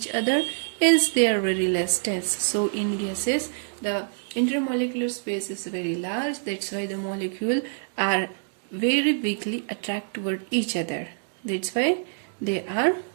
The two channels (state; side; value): silent; left; digital silence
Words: other, hence they are very less dense. So in gases, the intermolecular space is very large. That's why the molecules are very weakly attract toward each other. That's why they are